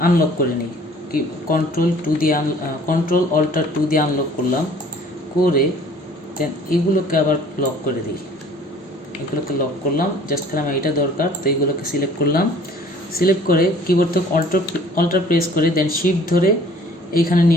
আনলক করে নিই, কি কন্ট্রোল অল্টার 2 দিয়ে আনলক করলাম, করে দেন এগুলোকে আবার লক করে দিই। এগুলোকে লক করলাম, জাস্ট খালি আমার এটা দরকার। তো এগুলোকে সিলেক্ট করলাম, সিলেক্ট করে কিবোর্ড থেকে অল্টার প্রেস করে দেন শিফট ধরে এইখানে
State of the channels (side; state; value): both; normal; correlation 0.52